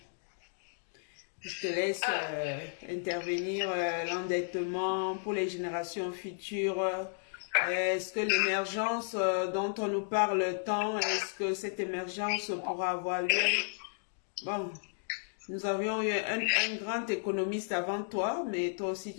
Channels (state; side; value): silent; right; digital silence